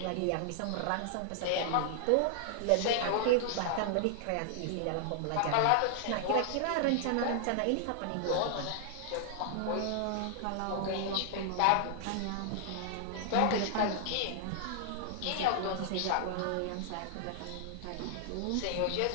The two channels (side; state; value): both; different; correlation 0.00